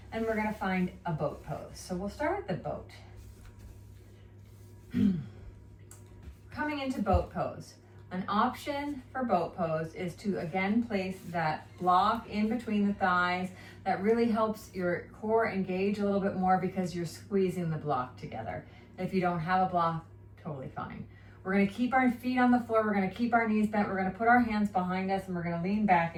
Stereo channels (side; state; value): both; identical; correlation 1.00